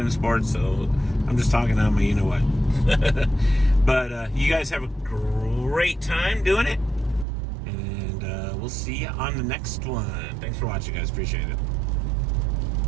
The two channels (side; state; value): left; drops out; at 7.2 s